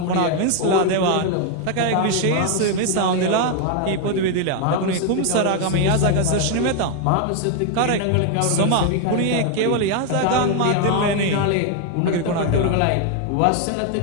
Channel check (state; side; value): different; both; correlation 0.01